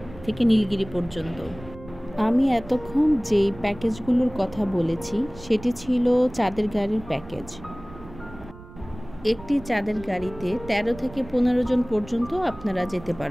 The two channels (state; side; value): noise; right; rumble, 17 dB below the sound